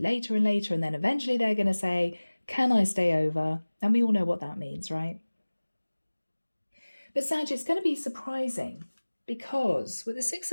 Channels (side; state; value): both; inverted; correlation -1.00